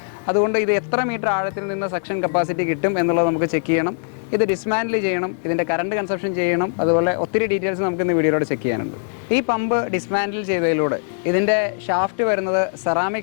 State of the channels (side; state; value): right; silent; digital silence